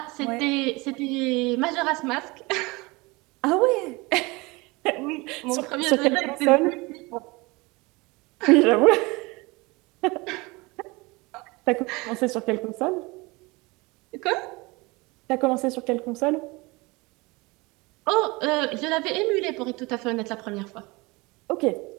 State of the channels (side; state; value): left; quieter; 24.5 dB